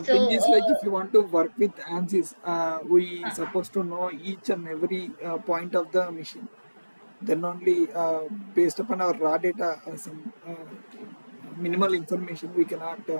thing so is like if you want to work with ANSYS, we uh, supposed to know each and every point of the machine. Then only based upon our raw data, some minimal information we cannot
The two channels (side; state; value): both; inverted; correlation -1.00